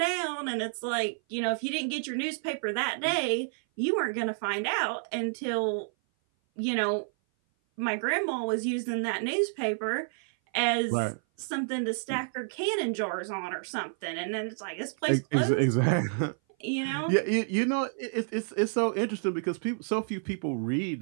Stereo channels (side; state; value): left; silent; 56 dB below the other